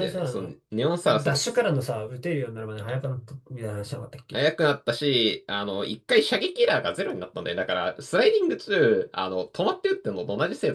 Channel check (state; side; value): identical; both; correlation 1.00